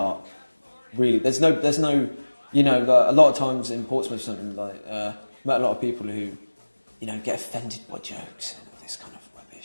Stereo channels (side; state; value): both; inverted; correlation -1.00